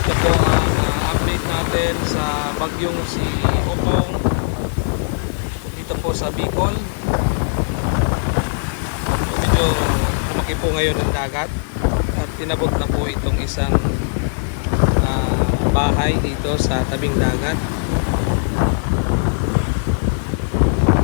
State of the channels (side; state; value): right; silent; 66 dB below the other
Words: Ito po ang update natin sa bagyong si Ugong dito po sa Bicol. Medyo malaki po ngayon ang dagat at tinabot na po itong isang bahay dito sa tabing dagat.